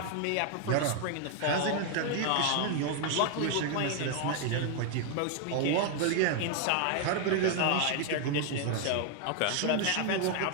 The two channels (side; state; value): both; different; correlation 0.00